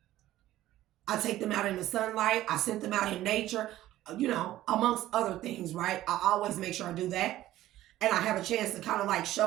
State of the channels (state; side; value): quieter; left; 14.5 dB